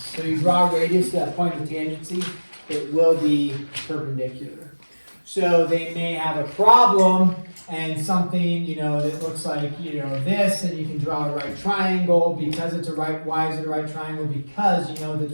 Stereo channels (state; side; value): inverted; both; correlation -1.00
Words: So you draw a radius to that point of tangency, it will be perpendicular. So they may have a problem and something, that looks like, this, and you can draw a right triangle because it's a right. Why is it a right triangle? Because you know that